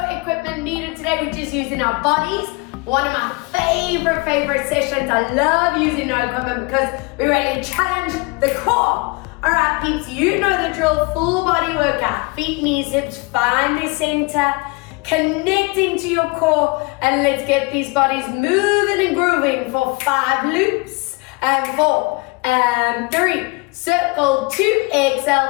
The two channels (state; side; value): quieter; right; 27.5 dB